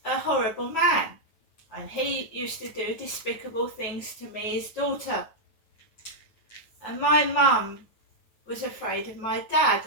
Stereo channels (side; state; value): right; late; 9.2 ms